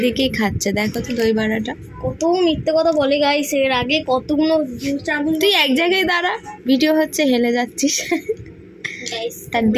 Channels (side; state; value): both; identical; correlation 1.00